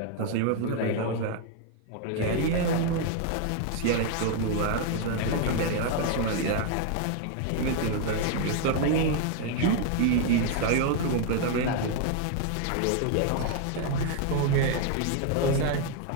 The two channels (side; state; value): both; different; correlation 0.00